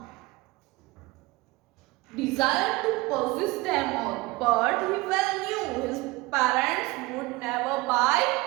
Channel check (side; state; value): left; quieter; 22.0 dB